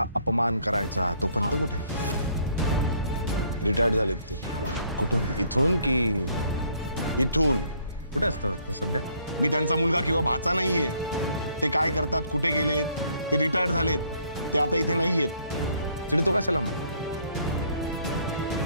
अपमान करायचा. तो पंत कुठे? रिटायर्ड झालेत ते. कुठून, इथून की इथून. कुठे असतात आता सध्या? मी त्यांचा मुलगा किंवा भाचा नाहीये. ते काय करतात, कुठे गेलेत, ते रिटायर्ड झालेत, ते आता इथे नाहीयेत. चिडतो कशाला मग?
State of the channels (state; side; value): inverted; both; correlation -0.65